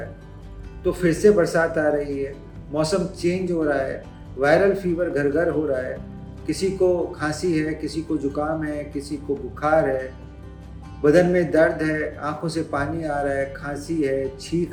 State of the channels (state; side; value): identical; both; correlation 1.00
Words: है। तो फिर से बरसात आ रही है, मौसम चेंज हो रहा है, वायरल फीवर घर घर हो रहा है। किसी को खांसी है, किसी को जुकाम है, किसी को बुखार है, बदन में दर्द है, आंखों से पानी आ रहा है, खांसी है,